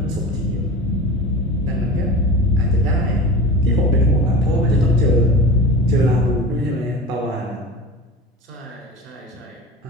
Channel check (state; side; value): normal; both; correlation 0.33